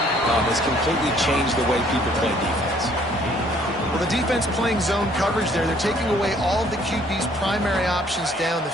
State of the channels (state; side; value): normal; both; correlation 0.61